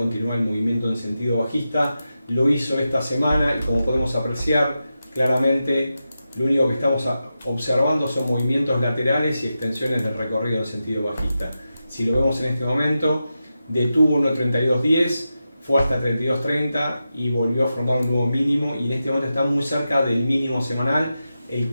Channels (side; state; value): both; inverted; correlation -0.90